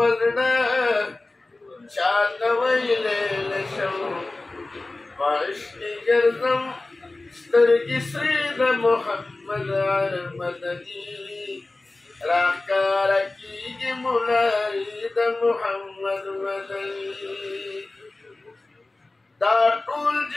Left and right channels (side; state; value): right; quieter; 3.1 dB